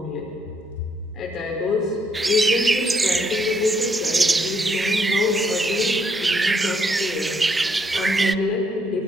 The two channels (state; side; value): normal; both; correlation 0.72